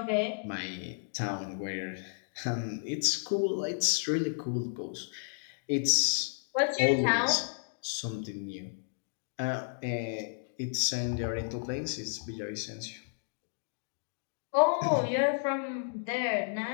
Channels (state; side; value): silent; right; digital silence